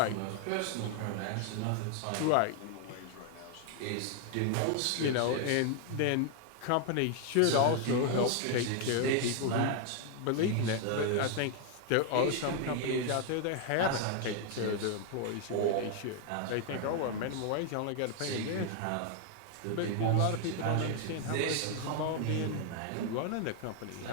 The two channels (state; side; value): different; both; correlation 0.00